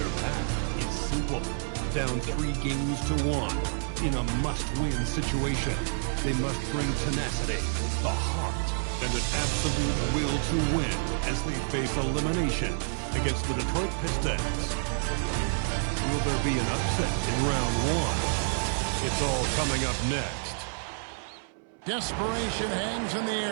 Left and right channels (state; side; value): silent; left; 59 dB below the other